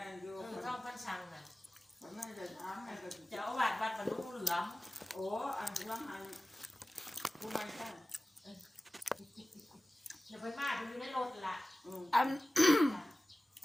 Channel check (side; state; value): both; normal; correlation 0.97